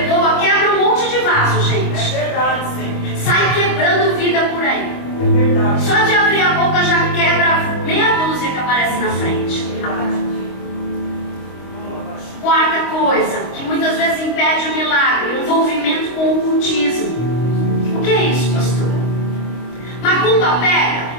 quebra um monte de vaso, gente. É verdade, Senhor. Sai quebrando vida por aí. É verdade. Só de abrir a boca já quebra meia dúzia que aparece na frente. Quarta coisa, que muitas vezes impede o milagre: o envolvimento com o ocultismo. O que é isso, pastor? Macumba pega?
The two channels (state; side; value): late; right; 25 ms